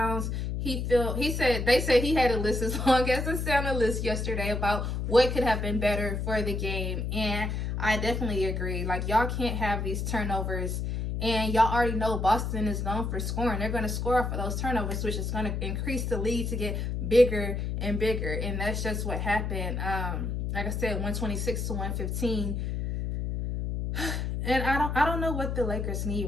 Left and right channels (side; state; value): left; noise; hum, 2 dB below the sound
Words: They said he had a list as long as the Santa list yesterday about what could have been better for the game. And I definitely agree. Like, y'all can't have these turnovers. And y'all already know Boston is known for scoring. They're going to score off of those turnovers, which is going to increase the lead to get bigger and bigger. And that's just what happened. Like I said, 126 to 115. And I don't know what the Lakers need